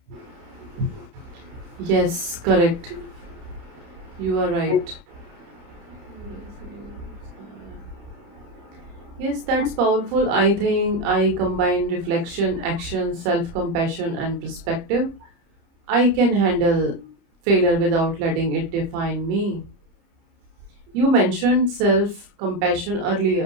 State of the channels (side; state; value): left; late; 30 ms